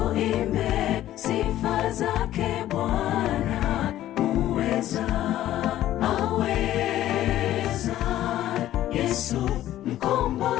sifa zake Bwana muweza. Aweza Yesu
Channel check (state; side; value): quieter; right; 13.4 dB